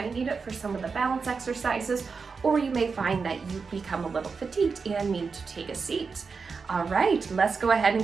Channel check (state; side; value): quieter; left; 5.0 dB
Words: need it for some of the balance exercises, or you may find that you become a little fatigued and need to take a seat. All right, let's go ahead